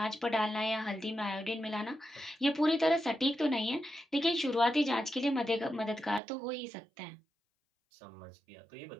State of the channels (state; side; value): drops out; left; at 6.2 s